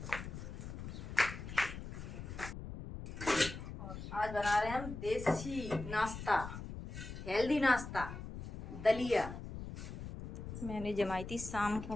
और आज बना रहे हैं हम देसी नाश्ता, हेल्दी नाश्ता, दलिया। मैंने जमाई थी शाम को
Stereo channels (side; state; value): left; noise; rumble, 9 dB below the sound